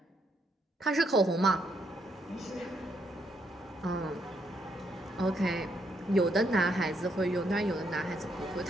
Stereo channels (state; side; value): normal; both; correlation 0.75